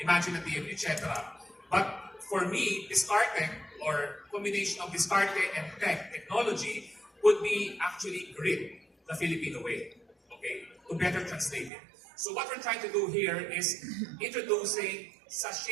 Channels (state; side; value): drops out; left; at 11.7 s